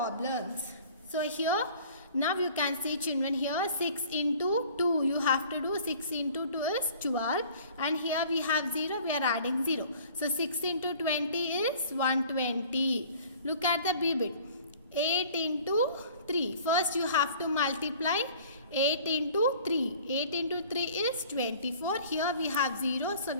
So here now you can see children here 6 into 2. You have to do 6 into 2 is 12. And here we have 0. We are adding 0. So 6 into 20 is 120. Look at the B bit. 8 into 3. First you have to multiply 8 into 3. 8 into 3 is 24. Here we have 0. So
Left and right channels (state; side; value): inverted; both; correlation -0.50